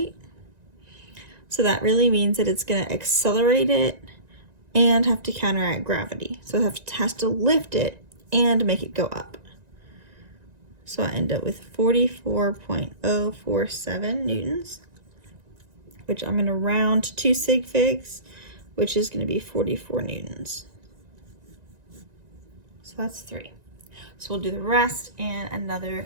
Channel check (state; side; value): late; left; 1.9 ms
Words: So that really means that it's going to accelerate it and have to counteract gravity. So it has to lift it and make it go up. So I end up with 44.047 newtons, which I'm going to round to 2 sig figs, which is going to be 44 newtons. So that's 3. So we'll do the rest in